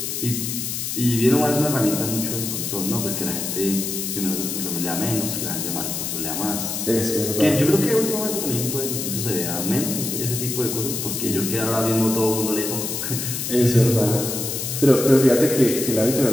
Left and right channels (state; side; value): noise; left; hiss, 3 dB below the sound